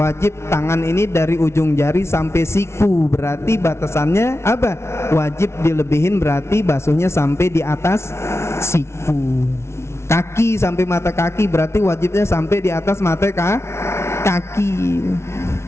tangan ini dari ujung jari sampai siku, berarti batasannya apa? Wajib dilebihin, berarti basuhnya sampai di atas siku. Kaki sampai mata kaki, berarti wajibnya sampai di atas mata kaki.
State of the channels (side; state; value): right; late; 0.13 ms